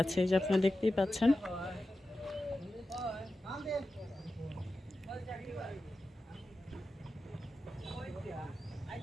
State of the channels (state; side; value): normal; both; correlation 0.92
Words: যে আপনারা দেখতেই পাচ্ছেন।